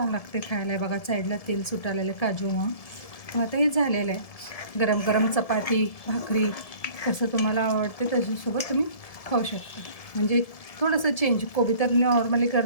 लागते खायला. बघा साईडला तेल सुटालेलं काजू मग आता हे झालेलं आहे. गरम गरम चपाती भाकरी कसं तुम्हाला आवडते त्याच्यासोबत तुम्ही खाऊ शकता. म्हणजे थोडंसं चेंज, कोबी तर नॉर्मली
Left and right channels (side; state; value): right; late; 1.7 ms